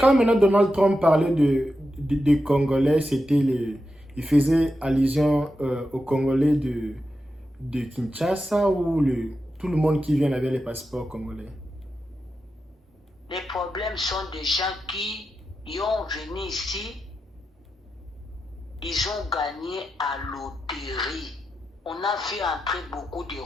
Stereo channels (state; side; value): normal; both; correlation 0.89